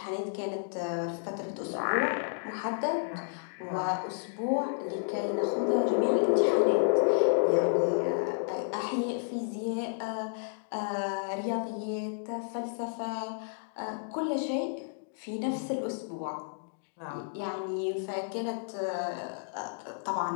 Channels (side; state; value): right; silent; digital silence